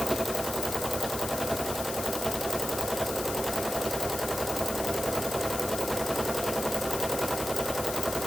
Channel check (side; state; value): left; noise; hiss, 6 dB below the sound